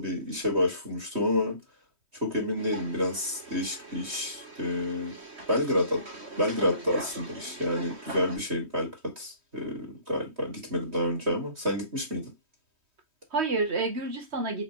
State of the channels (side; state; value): left; late; 3.2 ms